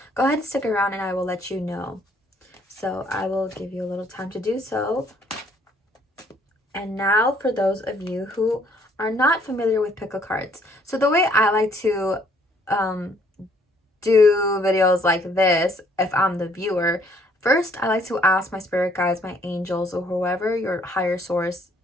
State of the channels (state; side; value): normal; both; correlation 0.64